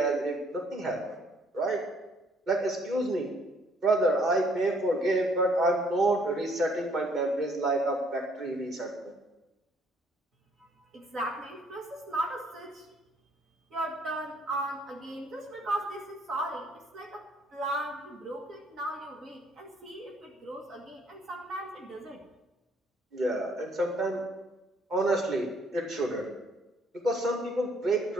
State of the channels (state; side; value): normal; both; correlation 0.64